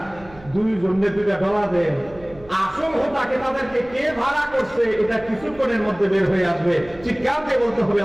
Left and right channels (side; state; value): right; noise; hum, 22 dB below the sound